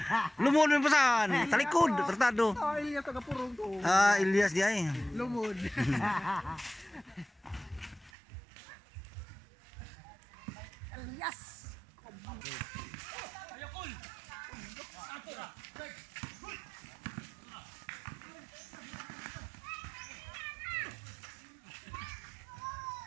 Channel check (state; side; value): drops out; left; at 8.1 s